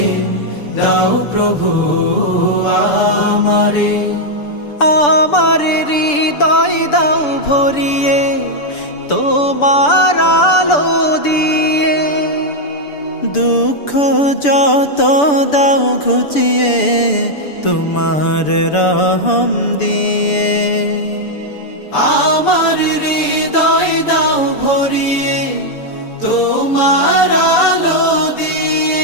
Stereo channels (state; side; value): late; right; 6.9 ms